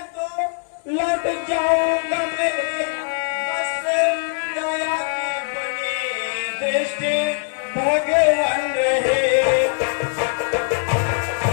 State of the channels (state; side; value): silent; right; digital silence